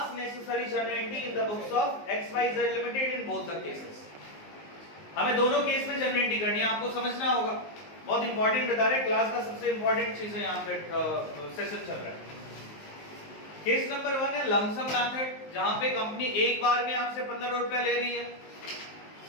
necessary generating in the books of XYZ limited in both the cases. हमें दोनों केस में जनरेटिंग करनी है, आपको समझना होगा। बहुत इंपॉर्टेंट बता रहे, क्लास का सबसे इंपॉर्टेंट चीज है यहाँ पे सेशन चल रहा है। केस नंबर 1 है लमसम मेथड, जहां पे कंपनी एक बार में आपसे 15 रुपए ले रही है।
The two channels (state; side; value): late; right; 19 ms